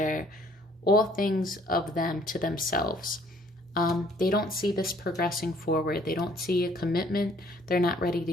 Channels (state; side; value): normal; both; correlation 0.60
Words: all things of them to themselves. They don't see this progressing forward. They don't see a commitment. They're not ready